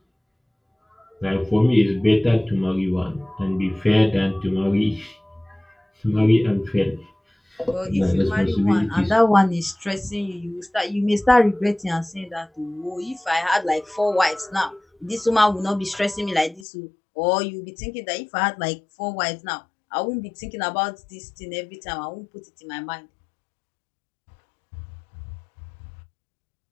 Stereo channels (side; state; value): right; drops out; at 16.7 s